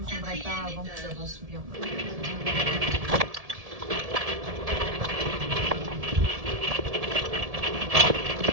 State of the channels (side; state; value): left; late; 1.7 ms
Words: prendrai pas avant que j'avance bien.